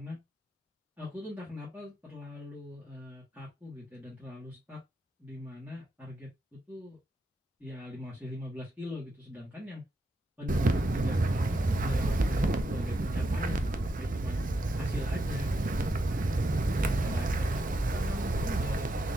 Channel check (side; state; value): both; normal; correlation 0.82